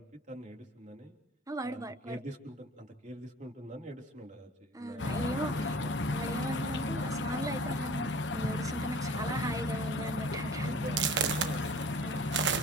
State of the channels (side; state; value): both; normal; correlation 0.44